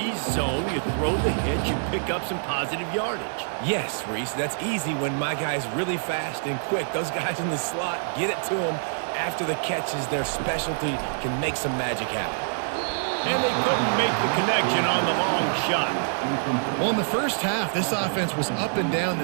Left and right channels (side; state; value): left; silent; digital silence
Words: zone, you throw the hitch, you pick up some positive yardage. Yes, Reese, that's easy when my guy's really fast and quick. Those guys in the slot, get it to them. After the catch is their specialty, can make some magic happen. And they couldn't make the connection on the long shot. Well, in the first half, this offense was up and down